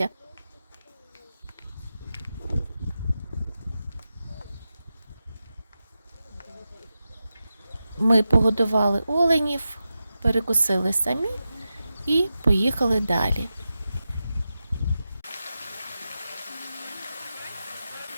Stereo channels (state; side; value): inverted; both; correlation -0.92